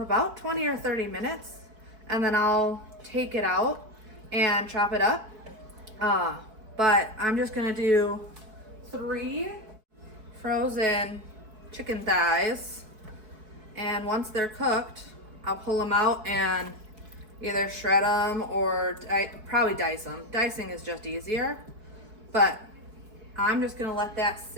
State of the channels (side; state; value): left; late; 4.6 ms